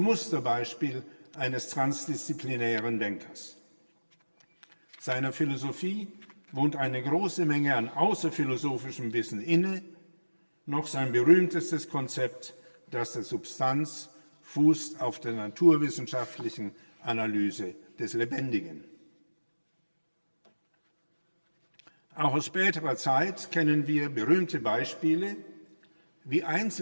eines transdisziplinären Denkers. Seiner Philosophie wohnt eine große Menge an außerphilosophischem Wissen inne, noch sein berühmtestes Konzept, das der Substanz, fußt auf der naturwissenschaftlichen Analyse des Lebendigen. Auch aus späterer Zeit kennen wir berühmte Beispiele, wie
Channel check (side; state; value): both; inverted; correlation -1.00